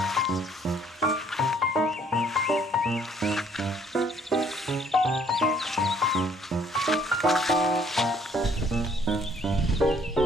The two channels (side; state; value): both; normal; correlation 0.62